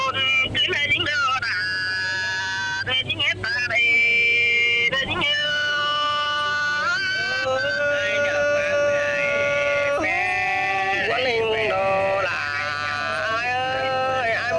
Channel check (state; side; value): identical; both; correlation 1.00